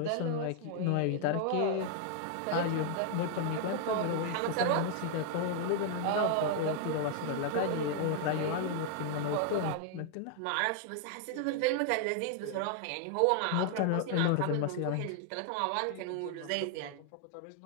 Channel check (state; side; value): different; both; correlation 0.00